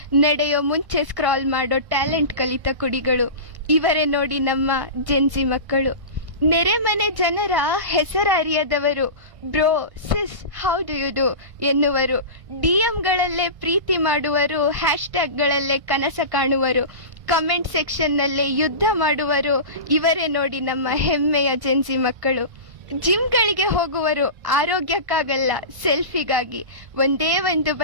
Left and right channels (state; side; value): late; left; 1.6 ms